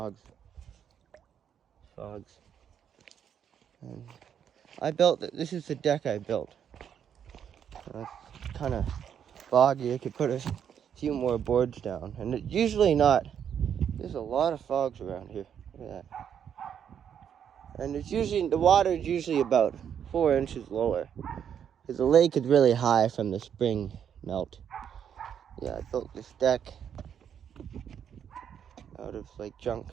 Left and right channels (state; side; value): quieter; left; 8.5 dB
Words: And I built, this is the deck I built. It's kind of foggy. I could put a few more boards down. And it's usually not, there's a lot of frogs around here. Look at that. And it's usually, the water is usually about 4 inches lower. Because the lake is really high from the spring melt. Yeah, I built this deck out of like junk.